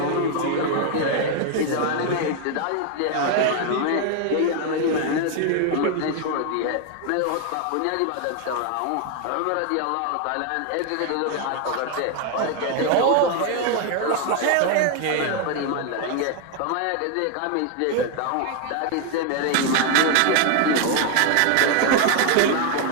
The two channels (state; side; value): different; both; correlation 0.01